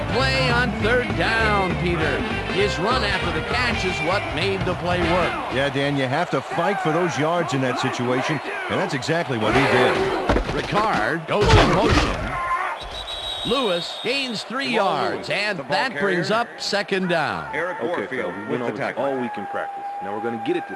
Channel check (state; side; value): identical; both; correlation 1.00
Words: play on third down, Peter. His run after the catch is what made the play work. Yeah, Dan, you have to fight for those yards in that situation, and that's exactly what he did. Ricard goes in motion. Lewis gains 3 yards, and that brings up second down. Eric Warfield with the tackle. All week in practice. Now we're going to get it